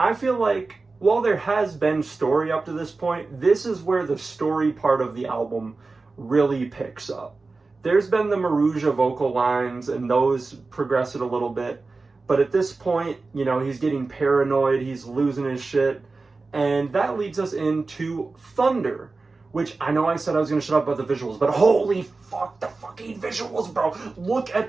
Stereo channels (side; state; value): left; quieter; 3.8 dB